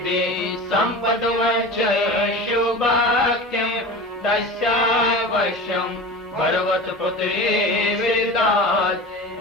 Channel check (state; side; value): normal; both; correlation 0.33